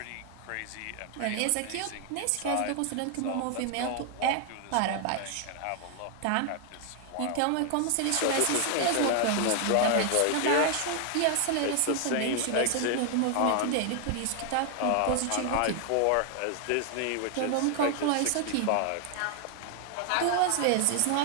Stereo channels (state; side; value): different; both; correlation 0.00